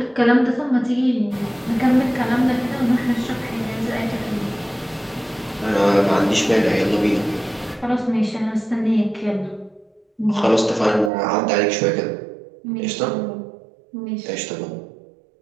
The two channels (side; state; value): left; drops out; at 11.1 s